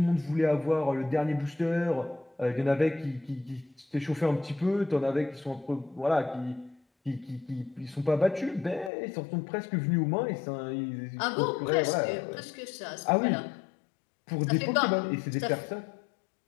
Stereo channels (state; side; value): drops out; right; at 8.9 s